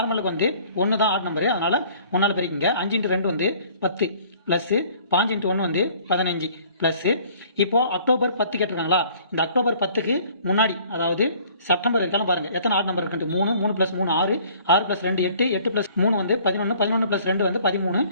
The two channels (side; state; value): both; inverted; correlation -0.55